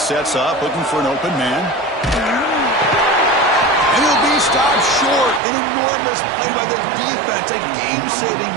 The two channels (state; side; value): drops out; left; at 5.4 s